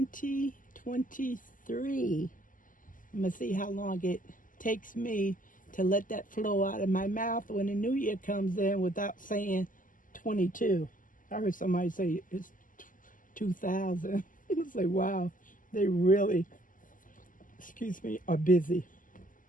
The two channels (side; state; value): right; late; 0.38 ms